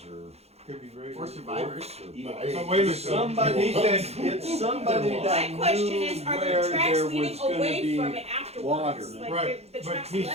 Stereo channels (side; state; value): left; late; 0.30 ms